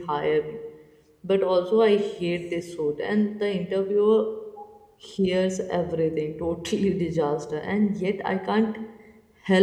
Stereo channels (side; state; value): both; identical; correlation 1.00